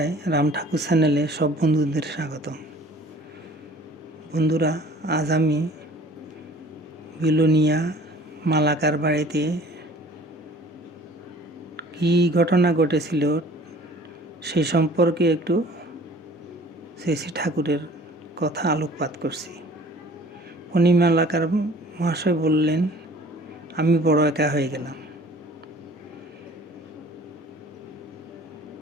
রাম ঠাকুর চ্যানেলে সব বন্ধুদের স্বাগত। বন্ধুরা, আজ আমি বিলোনিয়া মালাকার বাড়িতে কী ঘটনা ঘটেছিল সেই সম্পর্কে একটু শ্রী ঠাকুরের কথা আলোকপাত করছি। উনি মালাকার মহাশয় বললেন, আমি বড় একা হয়ে গেলাম।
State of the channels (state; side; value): normal; both; correlation 0.50